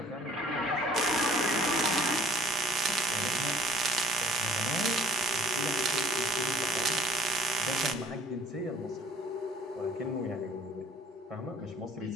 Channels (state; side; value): normal; both; correlation 0.55